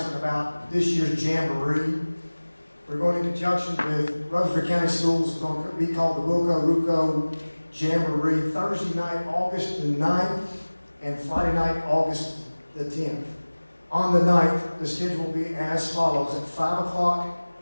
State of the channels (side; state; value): both; inverted; correlation -1.00